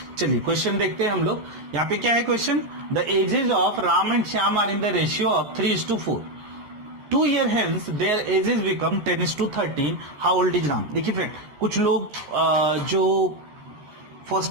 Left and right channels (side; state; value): left; late; 13 ms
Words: चलिए क्वेश्चन देखते हैं हम लोग। यहाँ पे क्या है question? The ages of Ram and Shyam are in the ratio of 3:4। 2 year hence their ages become 10:13. How old is Ram? देखिए फ्रेंड, कुछ लोग जो first